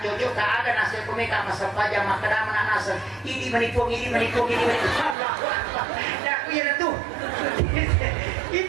cocok tak ada nasa pemika masa pajak makanan nasa ini menipu Allahu Akbar. Dah punya tuh.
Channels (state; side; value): drops out; left; at 5.2 s